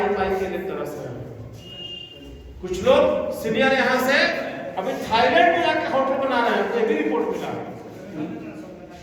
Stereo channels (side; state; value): both; identical; correlation 1.00